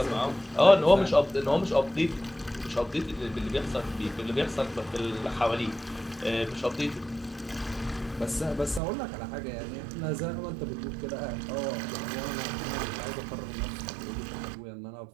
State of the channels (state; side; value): drops out; left; at 8.8 s